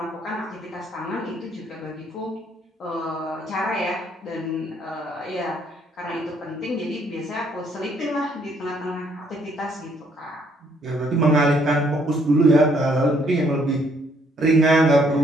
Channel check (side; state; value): both; normal; correlation 0.67